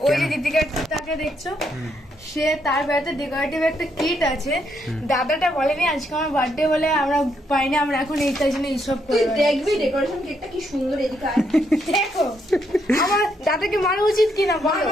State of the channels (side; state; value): both; normal; correlation 0.76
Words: ওই যে দীপিকাটাকে দেখছো, সে তার বাড়িতে ডেকোরেটিভ একটা কিট আছে, দাদাটা বলেনি আজকে আমার বার্থডে বলে আমরা পাইনি, আমরা এখন এই তাই জন্য এইসব তুই দেখবি ডেকোরেশন কেকটা কি সুন্দর, এদিকে আয়। দেখো আমার দাদাকে মারা উচিত কিনা বলো,